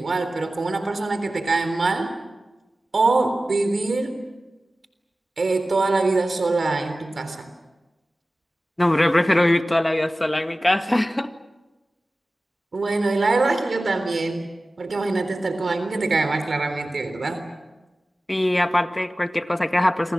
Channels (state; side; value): normal; both; correlation 0.96